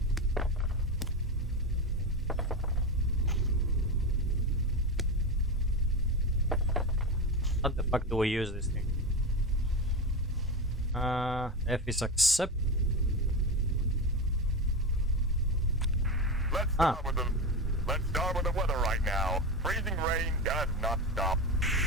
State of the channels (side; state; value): both; normal; correlation 0.18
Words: How the fuck do we use this thing? F is accept. Let's start with the weather right now. Freezing rain does not stop.